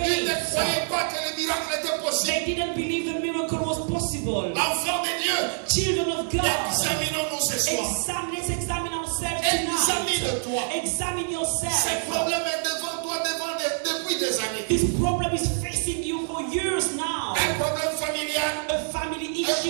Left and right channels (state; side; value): silent; left; digital silence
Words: ne faith. croyaient pas que le miracle était possible. They didn't believe the miracle was possible. Enfants de Dieu, Children of God, examinons-nous ce soir. let's examine ourselves Examine-toi. tonight. Examine Ce yourself. problème est devant toi depuis des années. This problem is facing you for years now. Un problème familial, A family un issue,